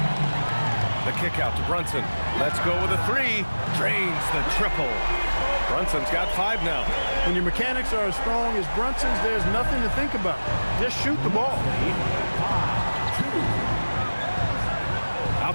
The kick out to Brunson. Let's go with a 3. Drains the triple. Brunson's got 5 now. When your mechanics are as strong as Brunson's, there's nothing to think about. Just shoot the ball.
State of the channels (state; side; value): inverted; both; correlation -1.00